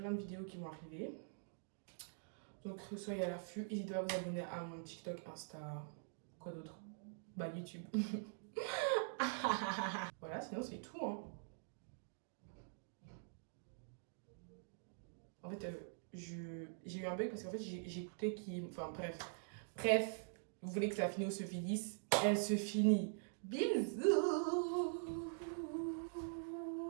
de vidéos qui vont arriver. Donc, soyez à l'affût. N'hésitez pas à vous abonner à mon TikTok, Insta, quoi d'autre? YouTube. Voilà, sinon c'est tout, hein. En fait, j'ai eu un bug parce qu'en fait, j'ai écouté qui... Enfin, bref, vous voulez que la vidéo se finisse? Elle se finit. Bisous.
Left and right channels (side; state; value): left; silent; digital silence